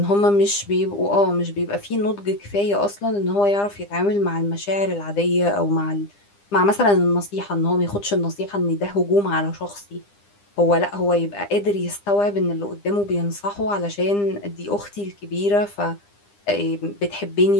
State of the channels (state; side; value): late; right; 9.9 ms